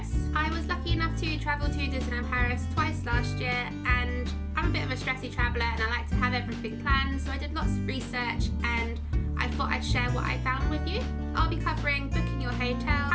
I was lucky enough to travel to Disneyland Paris twice last year, and I'm a bit of a stressy traveller and I like to have everything planned, so I did lots of research and I thought I'd share what I found with you. I'll be covering booking your hotel,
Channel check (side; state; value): both; identical; correlation 1.00